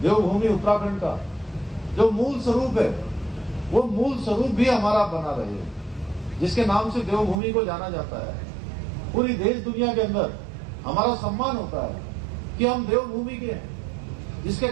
देवभूमि उत्तराखंड का जो मूल स्वरूप है, वो मूल स्वरूप भी हमारा बना रहे, जिसके नाम से देवभूमि को जाना जाता है। पूरी देश दुनिया के अंदर हमारा सम्मान होता है कि हम देवभूमि के हैं, जिसके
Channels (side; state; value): left; drops out; at 7.4 s